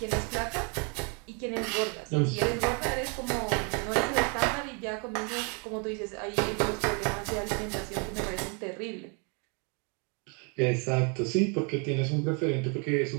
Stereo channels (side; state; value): left; quieter; 34.4 dB